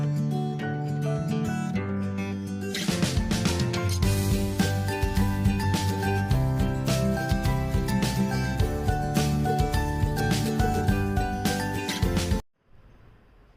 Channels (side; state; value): both; identical; correlation 1.00